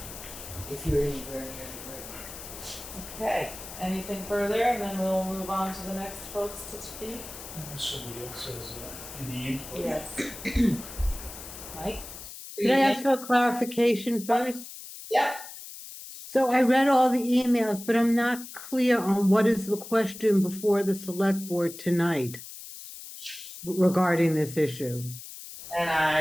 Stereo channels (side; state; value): left; noise; hiss, 13 dB below the sound